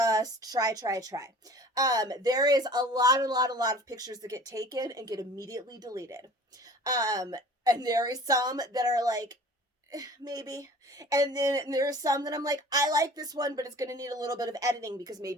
try. There is a lot of pictures that get taken and get immediately deleted. And there is some that are like, maybe. And then there are some that I'm like, I like this one, but it's going to need a little bit of editing because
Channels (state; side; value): normal; both; correlation 0.46